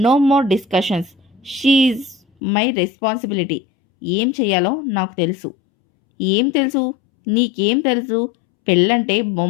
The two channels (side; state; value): right; drops out; at 2.2 s